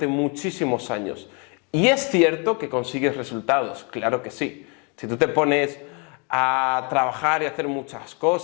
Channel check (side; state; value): right; quieter; 33.9 dB